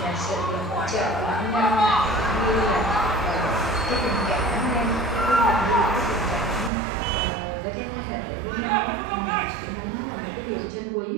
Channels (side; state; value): left; drops out; at 6.7 s